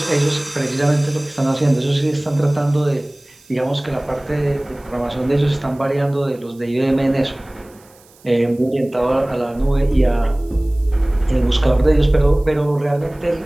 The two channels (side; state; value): right; noise; hiss, 29 dB below the sound